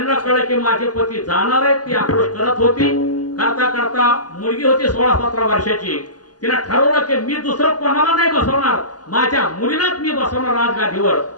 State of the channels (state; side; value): late; right; 0.69 ms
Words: कळलं की माझे पती जाणार आहेत. ती आक्रोश करत होती. करता करता मुलगी होती 16-17 वर्षाची. तिला ठरवलं की मी दुसरं कोणाला नाही बसवणार, माझ्या मुलीलाच मी बसवणार राजगादीवर.